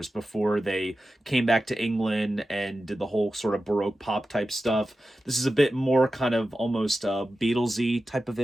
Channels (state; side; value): normal; both; correlation 0.93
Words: before they came back to England and did the whole sort of Baroque pop type stuff. This is a bit more kind of almost Beatlesy type of